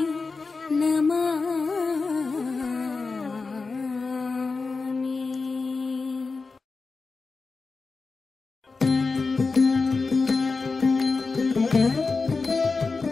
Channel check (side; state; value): right; quieter; 4.2 dB